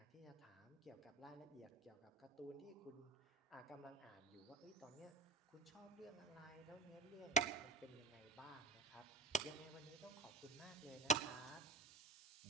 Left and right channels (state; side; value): quieter; left; 4.3 dB